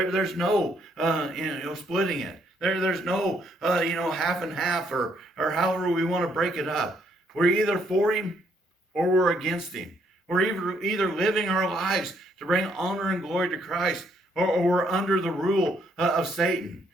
no splitting it. There's no half and half or however we want to break it up. We're either for him or we're against him. We're either living our lives to bring honor and glory to Christ, or we're under the rule of Satan.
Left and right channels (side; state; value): both; normal; correlation 0.70